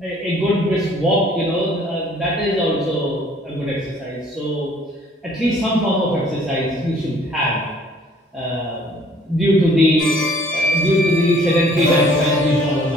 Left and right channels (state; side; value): normal; both; correlation 0.57